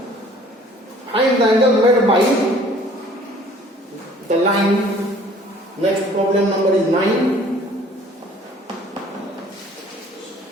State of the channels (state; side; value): normal; both; correlation 0.54